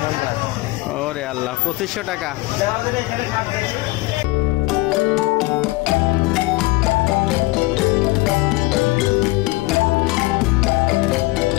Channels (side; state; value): right; quieter; 21.2 dB